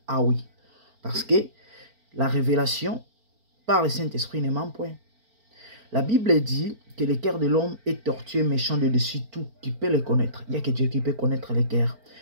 Ah oui, parce que la révélation par le Saint-Esprit ne ment point. La Bible dit que le cœur de l'homme est tortueux, méchant de dessus tout. Qui peut le connaître? Il n'y a que Dieu qui peut connaître le cœur.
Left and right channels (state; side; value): late; left; 4.4 ms